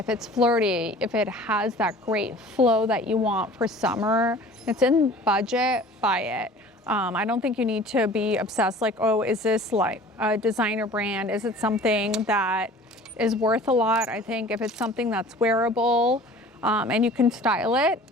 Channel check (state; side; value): normal; both; correlation 0.45